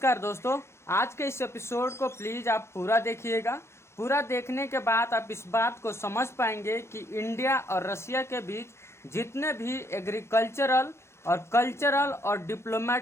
दोस्तों, आज के इस एपिसोड को प्लीज़ आप पूरा देखिएगा। पूरा देखने के बाद आप इस बात को समझ पाएंगे कि इंडिया और रसिया के बीच जितने भी एग्रीकल्चरल और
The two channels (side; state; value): right; late; 0.13 ms